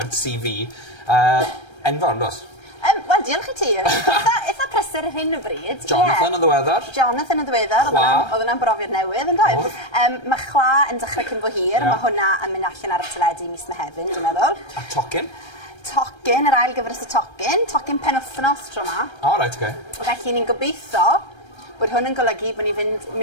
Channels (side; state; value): right; late; 1.3 ms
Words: CV, enfawr, dos? Wel, diolch i ti. Eitha prysur ar hyn o bryd. Jonathan yn ddiweddar. Jonathan yn ddiweddar. Oedd yna'n brofiad newydd, yn dweud. Mae chwa yn dechrau cyn fo hir. Mae hwnna yn mynd allan ar y teledu mis Mehefin, dwi'n meddwl. A tocyn? Tocyn, yr ail gyfres y tocyn. Tocyn penwthnos tro yma. O, reit, oce. Felly ni'n gobeithio bod hwn yn golygu bod ni'n